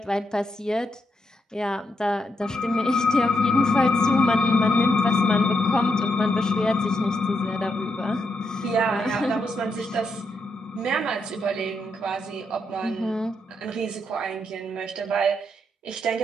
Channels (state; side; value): normal; both; correlation 0.81